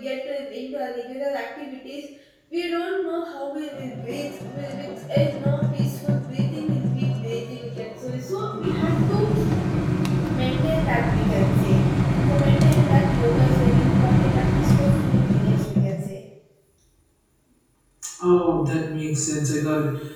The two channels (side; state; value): both; identical; correlation 1.00